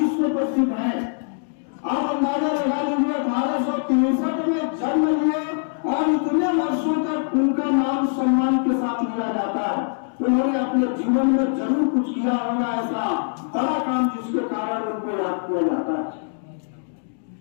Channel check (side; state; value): right; silent; digital silence